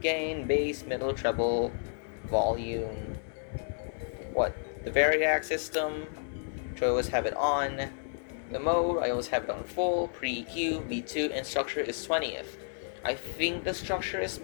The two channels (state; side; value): silent; right; digital silence